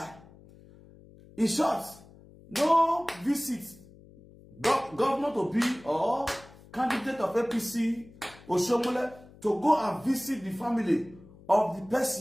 In short, no visit governor to be or candidate of APC or Shomole to go and visit the family of the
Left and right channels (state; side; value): noise; left; hum, 23 dB below the sound